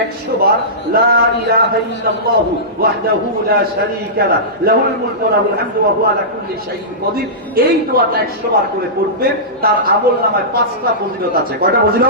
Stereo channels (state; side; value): normal; both; correlation -0.18